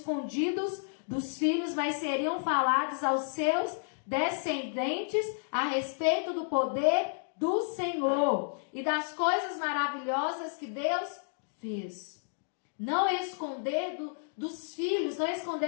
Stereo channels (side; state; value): right; silent; digital silence